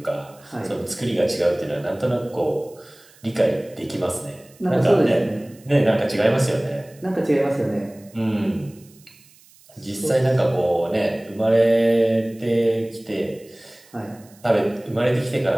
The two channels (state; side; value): noise; right; hiss, 27 dB below the sound